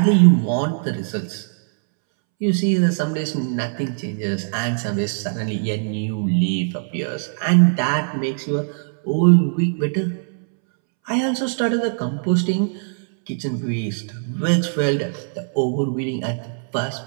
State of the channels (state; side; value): silent; left; 65 dB below the other